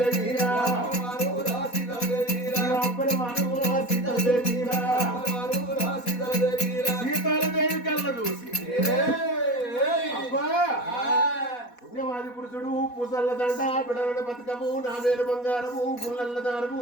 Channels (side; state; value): right; late; 4.1 ms